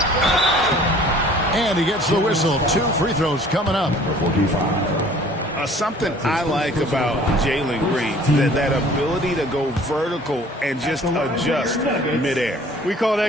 And he gets the whistle. 2 free throws coming up. Something I like about Jalen Green, that ability to go vertical and just adjust midair. We call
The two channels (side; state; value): both; normal; correlation 0.51